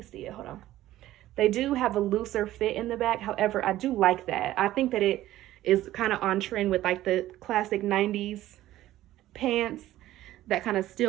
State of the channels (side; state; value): left; quieter; 14.6 dB